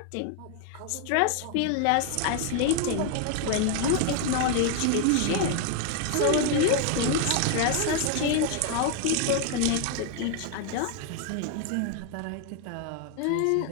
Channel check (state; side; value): different; both; correlation 0.00